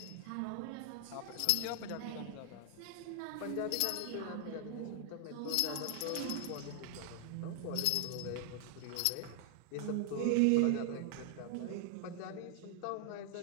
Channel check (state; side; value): different; both; correlation 0.00